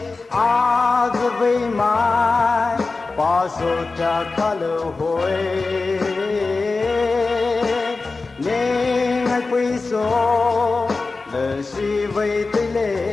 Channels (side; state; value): right; quieter; 3.8 dB